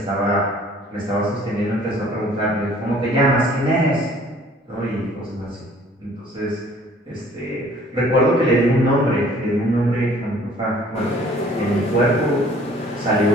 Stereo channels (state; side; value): normal; both; correlation 0.55